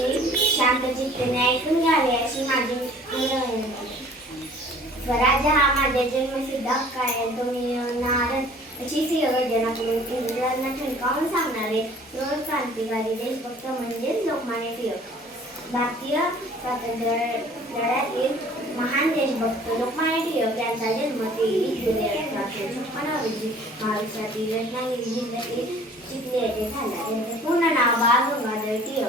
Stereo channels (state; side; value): normal; both; correlation 0.51